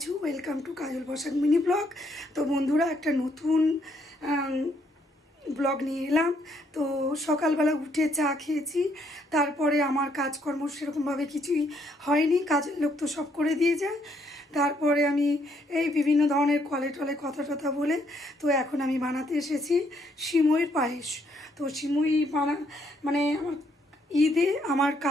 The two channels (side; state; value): both; normal; correlation 0.71